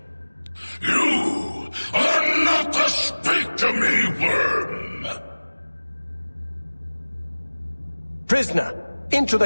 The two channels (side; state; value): both; inverted; correlation -1.00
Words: You are not to speak to me, worm! Prisoner, into